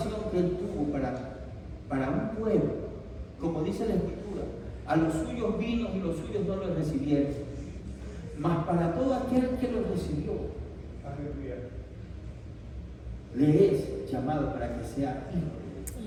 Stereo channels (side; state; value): both; identical; correlation 1.00